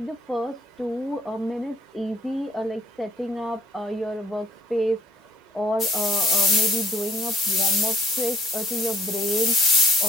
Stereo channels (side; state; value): both; normal; correlation 0.59